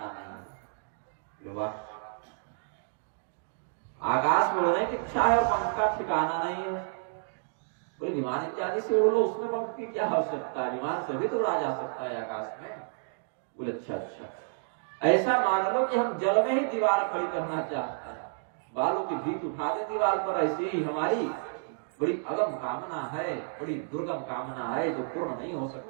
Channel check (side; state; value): left; silent; digital silence